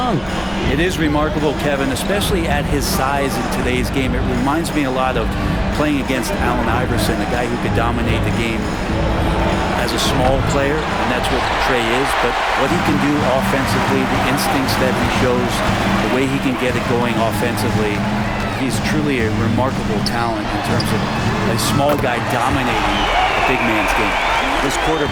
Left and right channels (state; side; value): identical; both; correlation 1.00